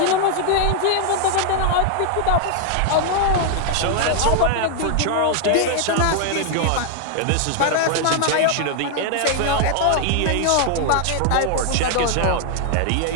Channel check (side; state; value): both; different; correlation 0.00